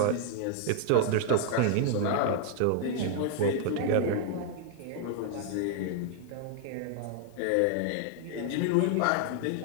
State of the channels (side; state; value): both; different; correlation 0.00